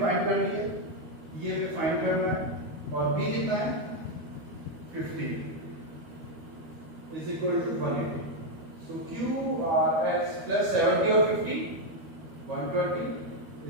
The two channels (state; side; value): late; left; 13 ms